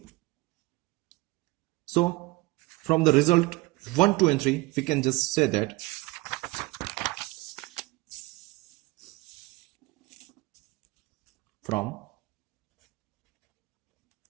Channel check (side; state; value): left; quieter; 22.0 dB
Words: So from the result 1, 2 and 3, we can just say that from